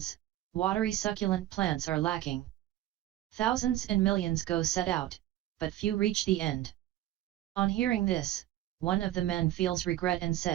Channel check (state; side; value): quieter; left; 14.1 dB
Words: watery succulent plants are lacking. Thousands and millions go set out, but few reach the end." On hearing this, one of the men feels regret and